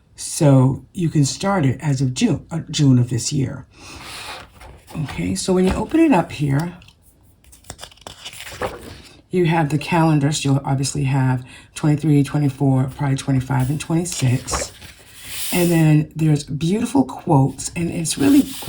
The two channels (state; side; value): identical; both; correlation 1.00